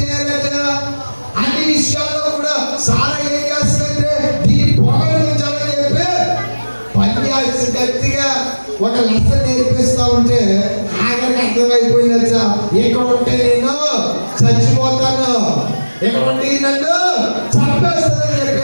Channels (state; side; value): inverted; both; correlation -1.00